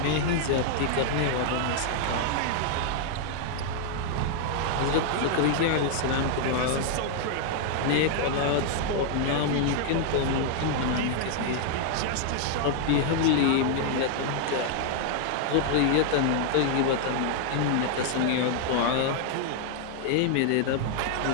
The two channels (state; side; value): different; both; correlation 0.00